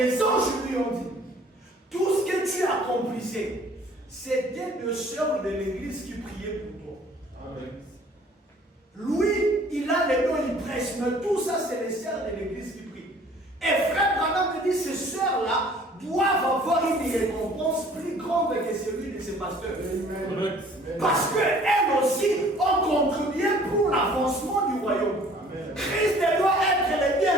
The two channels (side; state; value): both; normal; correlation 0.54